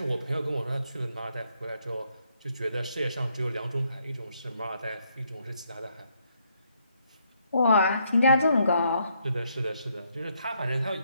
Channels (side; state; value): both; inverted; correlation -0.74